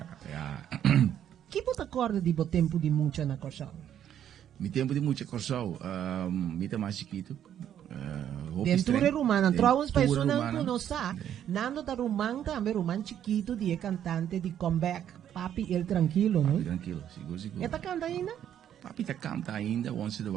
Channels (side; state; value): left; quieter; 10.1 dB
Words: Que você acorda de bo tempo de mucha na Corsao? Mi tempo de mucha Corsao, mi tá mais chiquito. Dentro rumana, trouwens pessoas não conhecem. Nando da rumang também, rumang chiquito, de cantante de comeback. Papi El Tranquilo, não? Papi Tranquilo, seguro. Eta canta ainda? Papi tá canta ainda, once in a